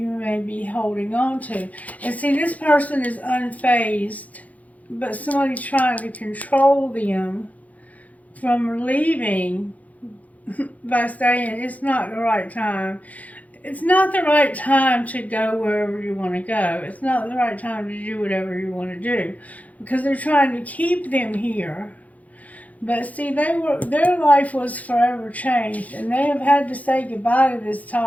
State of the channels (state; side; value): late; right; 0.073 ms